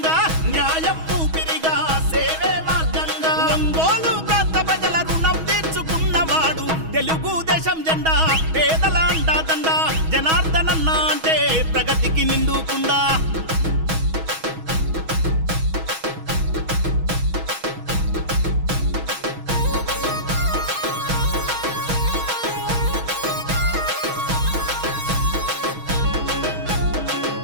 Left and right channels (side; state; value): left; late; 6.2 ms